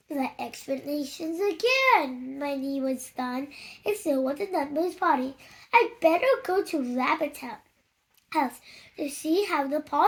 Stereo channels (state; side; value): identical; both; correlation 1.00